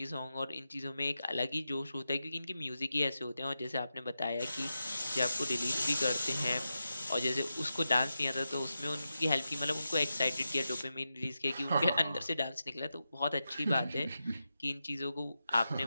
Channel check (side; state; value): both; inverted; correlation -0.90